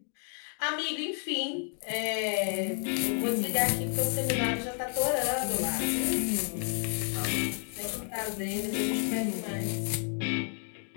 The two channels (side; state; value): right; silent; 55 dB below the other